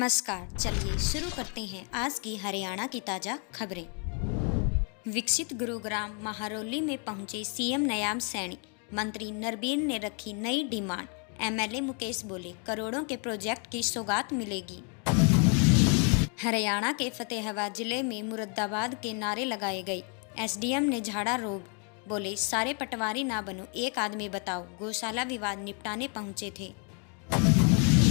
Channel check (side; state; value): right; quieter; 38.8 dB